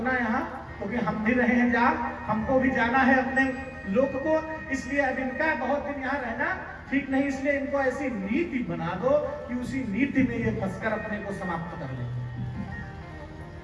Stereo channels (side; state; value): both; identical; correlation 1.00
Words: यहाँ, क्योंकि हम भी रहे हैं जा, हमको भी जाना है अपने लोक को, इसलिए अब इनका बहुत दिन यहाँ रहना ठीक नहीं, इसलिए इनको ऐसी नीति बना दो कि उसी नीति में ये फंसकर अपने को समाप्त कर ले।